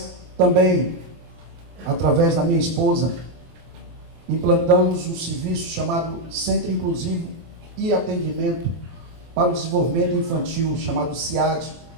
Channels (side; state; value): left; late; 24 ms